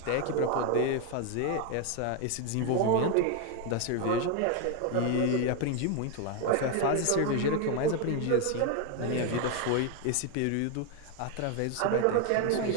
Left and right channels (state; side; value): different; both; correlation 0.01